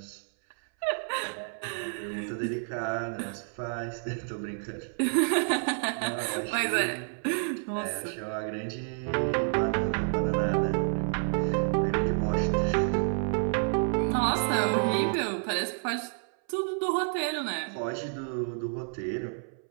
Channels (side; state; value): left; silent; 58 dB below the other